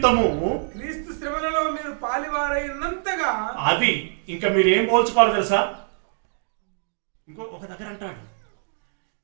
క్రీస్తు శ్రమలలో మీరు పాలివారైనంతగా, అది ఇంకా మీరు ఏం పోల్చుకోవాలి తెలుసా? ఒక దగ్గర అంటాడు,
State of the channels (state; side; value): silent; left; 62 dB below the other